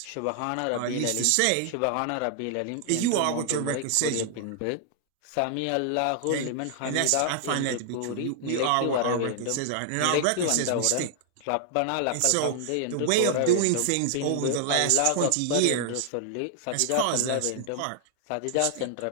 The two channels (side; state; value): both; different; correlation 0.00